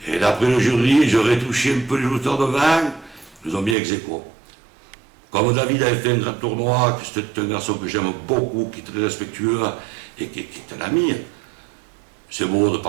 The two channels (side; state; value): left; drops out; at 3.8 s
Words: Et d'après le jury, j'aurais touché un peu les lutteurs devant, ils nous ont mis ex aequo. Comme David avait fait un grand tournoi, que c'était un garçon que j'aime beaucoup, qui est très respectueux et qui est un ami, c'est beau de